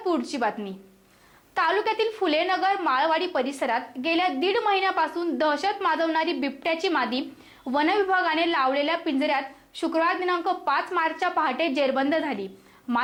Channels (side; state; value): both; identical; correlation 1.00